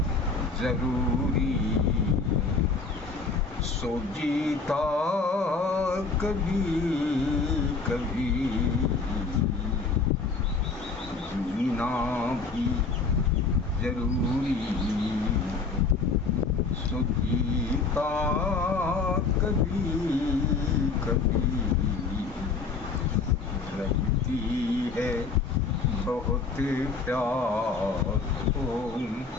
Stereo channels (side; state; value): right; quieter; 4.4 dB